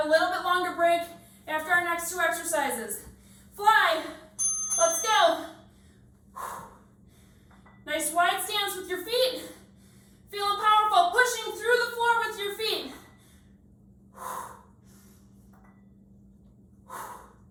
a little bit longer break after our next 2 exercises. Fly. Let's go. Nice wide stance with your feet. Feeling powerful. Pushing through the floor with your feet.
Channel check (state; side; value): identical; both; correlation 1.00